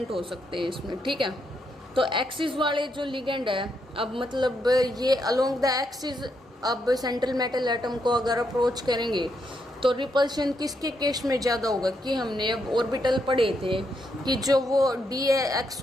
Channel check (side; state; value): both; normal; correlation 0.79